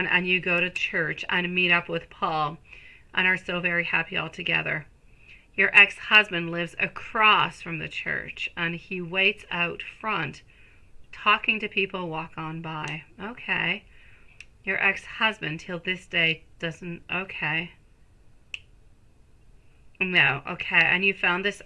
and you go to church and meet up with Paul and are so very happy all together, your ex-husband lives across from the church and he waits out front talking to people walk on by. Okay. Your ex-husband till this day doesn't, okay. No, okay, and you found this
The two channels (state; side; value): identical; both; correlation 1.00